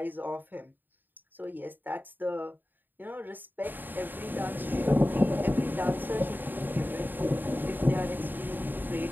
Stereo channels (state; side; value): late; left; 0.091 ms